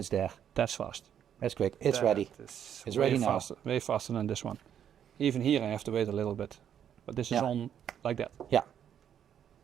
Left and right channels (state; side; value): quieter; left; 9.2 dB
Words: there. That's fast. That's quick. It's ready. It's ready now. Way faster than this one. Even here I have to wait a little bit. But this is on like that. Yeah.